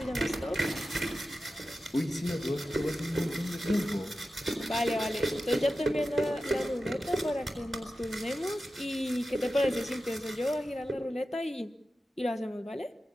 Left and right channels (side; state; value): both; normal; correlation 0.92